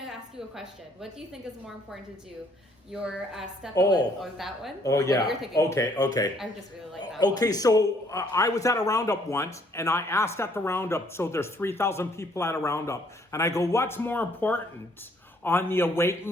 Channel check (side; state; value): both; normal; correlation 0.64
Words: to ask you a question. What do you think is more important to do? Your step or that one? Oh, What yeah. you're thinking? Okay. I just really like that Okay, one. so I was at a roundup once, and I asked at the roundup, so there's 3,000 people at a roundup, and I go, what's more important, on the